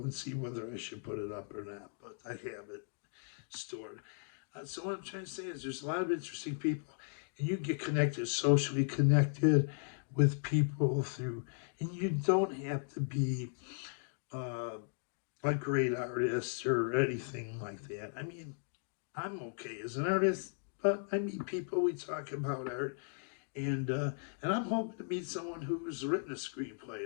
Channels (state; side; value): silent; right; digital silence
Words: and see whether I should put it up or not. But I have it stored. So what I'm trying to say is there's a lot of interesting people, and you get connected, socially connected with people through, and you don't have to be a great artist or anything like that. I mean, I'm okay as an artist, but I meet people, we talk about art, and I'm hoping to meet someone who's written a